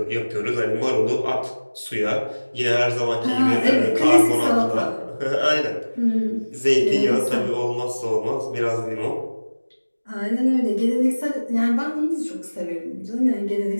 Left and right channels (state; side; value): inverted; both; correlation -1.00